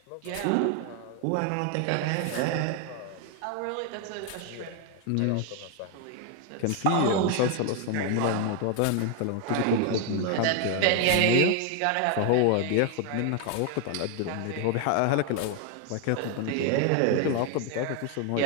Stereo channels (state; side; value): different; both; correlation 0.01